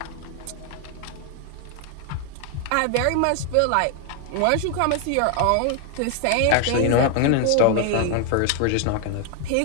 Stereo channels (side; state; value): both; different; correlation 0.00